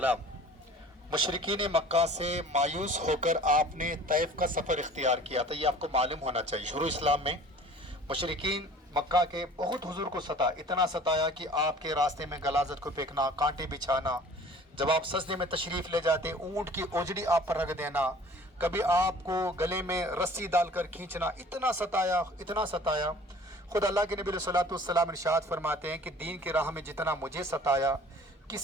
مشرکین مکہ سے مایوس ہو کر آپ نے طیف کا سفر اختیار کیا تھا، یہ آپ کو معلوم ہونا چاہیے۔ شروع اسلام میں مشرکین مکہ کے بہت حضور کو اتنا ستایا کہ آپ کے راستے میں غلاظت کو پھینکنا، کانٹے بچھانا، جب آپ سجدے میں تشریف لے جاتے اونٹ کی اوجڑی آپ پر رکھ دینا، کبھی آپ کو گلے میں رسی ڈال کر کھینچنا، اتنا ستایا۔ خود اللہ کے نبی علیہ الصلوۃ والسلام ارشاد فرماتے ہیں کہ دین کی راہ میں جتنا مجھے ستایا،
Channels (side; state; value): both; normal; correlation 0.48